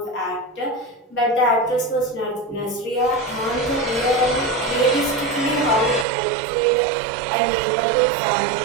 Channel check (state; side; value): drops out; left; at 6.1 s